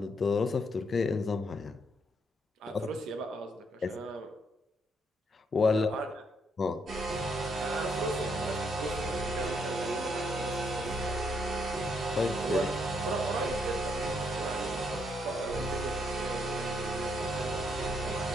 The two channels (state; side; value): normal; both; correlation 0.74